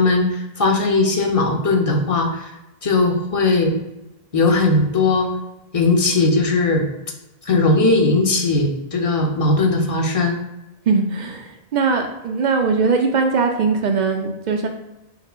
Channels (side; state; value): left; late; 1.6 ms